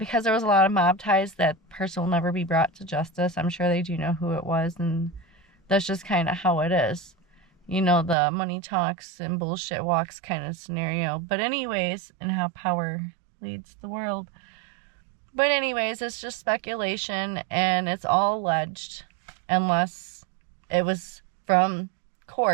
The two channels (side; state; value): left; drops out; at 8.2 s